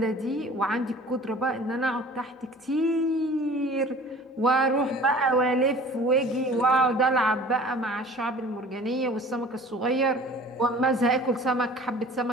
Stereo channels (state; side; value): normal; both; correlation 0.45